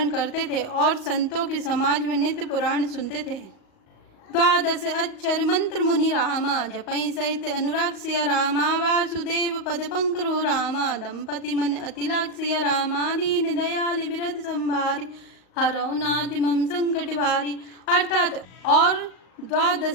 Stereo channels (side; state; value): right; late; 38 ms